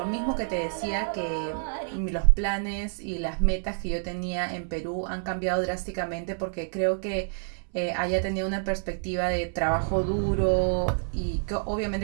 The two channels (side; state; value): left; silent; 59 dB below the other